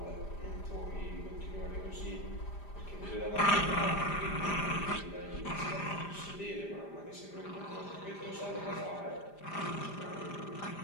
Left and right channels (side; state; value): right; late; 5.0 ms